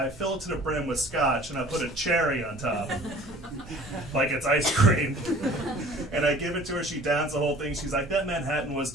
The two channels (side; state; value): both; normal; correlation 0.48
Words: fill it to the brim with scotch, and I put a cherry on top, like it's ice cream. And I give it to her, she downs the whole thing. She's like, that Manhattan was